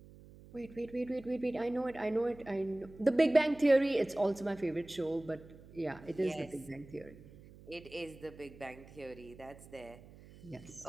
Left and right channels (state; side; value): noise; right; hum, 20 dB below the sound